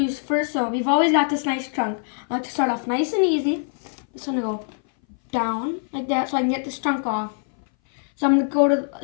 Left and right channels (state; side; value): silent; right; 60 dB below the other